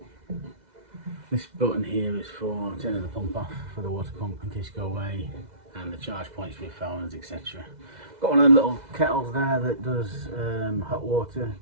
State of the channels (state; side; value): late; left; 2.0 ms